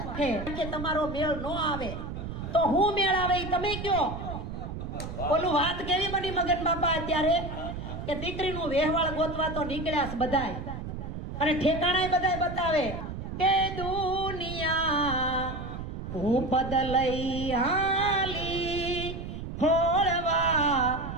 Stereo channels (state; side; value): noise; right; rumble, 7 dB below the sound